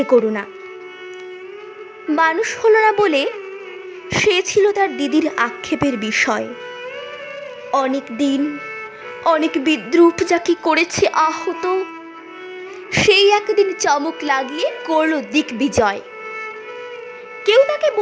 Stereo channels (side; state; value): both; identical; correlation 1.00